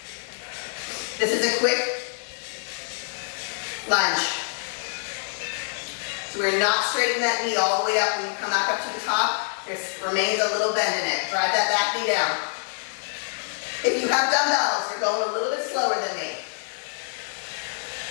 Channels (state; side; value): silent; right; 61 dB below the other